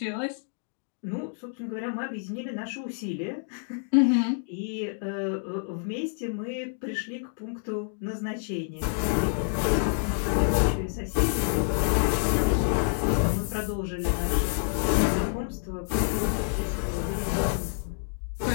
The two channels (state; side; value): silent; right; digital silence